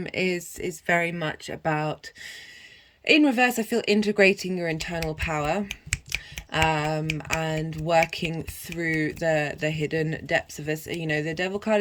very much about, in reverse, I feel integrating your internal power. And working through the hidden depths of us. You know, the Devil card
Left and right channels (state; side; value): identical; both; correlation 1.00